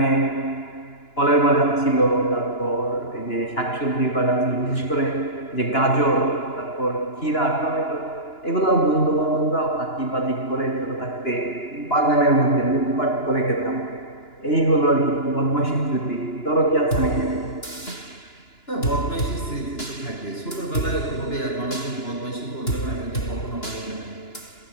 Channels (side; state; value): right; late; 2.9 ms